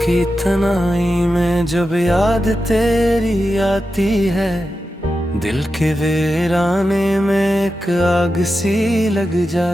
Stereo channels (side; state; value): both; normal; correlation 0.90